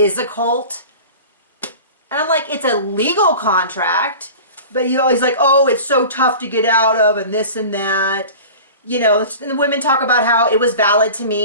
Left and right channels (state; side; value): inverted; both; correlation -0.37